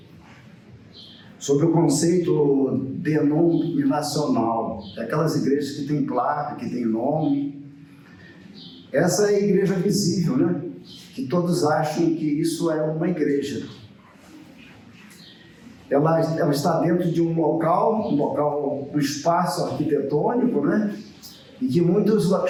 Sobre o conceito denominacional, aquelas igrejas que têm placa, que têm nome. Essa é a igreja visível, né? Que todos acham que isso é uma igreja. Ela está dentro de um local, um espaço arquitetônico, né? E que muitos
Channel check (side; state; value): both; identical; correlation 1.00